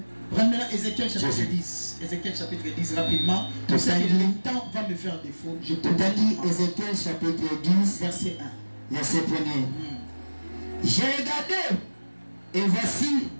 Prends maintenant Ézéchiel chapitre 10. Ézéchiel chapitre 10 rapidement. Parce que le temps va me faire défaut. Je te dis Ézéchiel chapitre 10 verset 1. Verset 1. J'ai regardé et voici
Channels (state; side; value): inverted; both; correlation -1.00